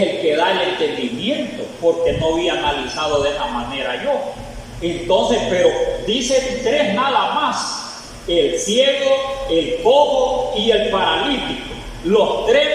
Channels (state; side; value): identical; both; correlation 1.00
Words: que da el entendimiento, porque no había analizado de esa manera yo. Entonces, pero dice tres nada más: el ciego, el cojo y el paralítico. Los